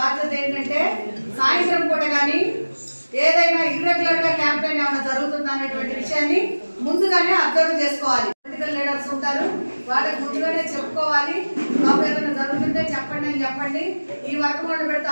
ఏంటంటే సాయంత్రం పూట కానీ ఏదైనా ఇర్రెగ్యులర్ గా క్యాంపెయిన్ ఏమైనా జరుగుతుందా అనేటువంటి విషయాన్ని ముందుగానే అబ్జర్వ్ చేసుకోవాలి. పొలిటికల్ లీడర్స్ ఉంటారు, వాళ్ళకి ముందుగానే చెప్పుకోవాలి. బాబు ఏదైనా జరుగుతుంటే చెప్పండి అని చెప్పండి. ఈ వర్క్ వాళ్ళు పెడితే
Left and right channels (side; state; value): both; inverted; correlation -1.00